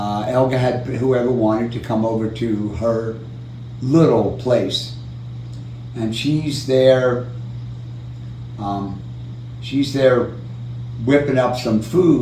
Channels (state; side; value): identical; both; correlation 1.00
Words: had whoever wanted to come over to her little place, and she's there whipping up some